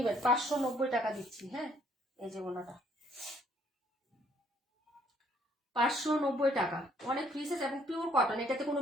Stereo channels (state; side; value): normal; both; correlation 0.65